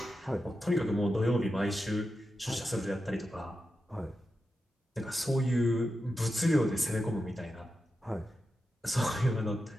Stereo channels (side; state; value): both; normal; correlation 0.89